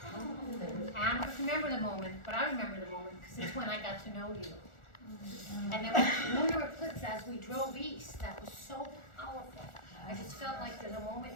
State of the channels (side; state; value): right; late; 1.4 ms